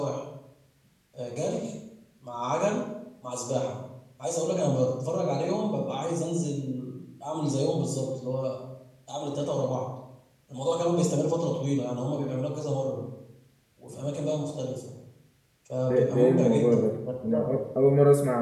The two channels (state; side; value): identical; both; correlation 1.00